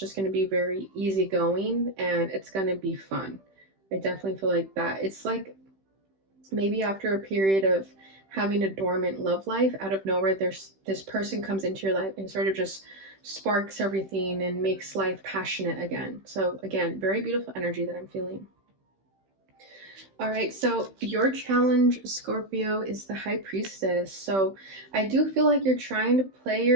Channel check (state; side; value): late; left; 15 ms